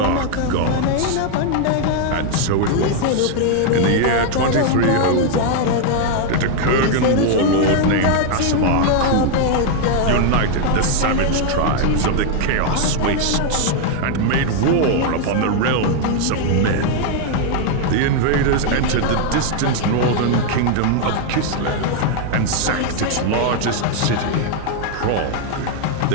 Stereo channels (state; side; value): different; both; correlation 0.00